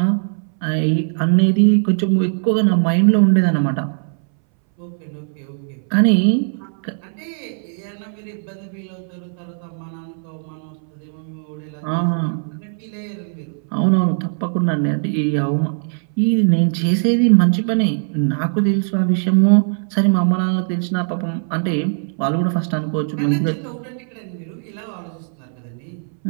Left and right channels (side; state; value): left; silent; 63 dB below the other